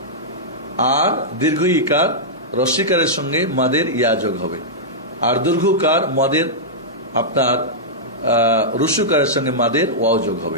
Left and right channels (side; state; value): both; normal; correlation -0.10